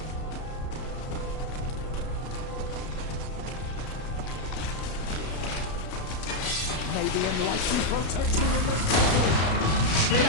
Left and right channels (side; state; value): right; late; 33 ms